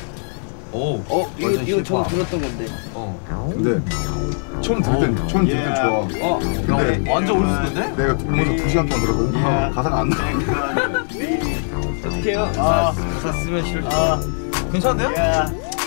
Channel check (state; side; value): silent; right; 66 dB below the other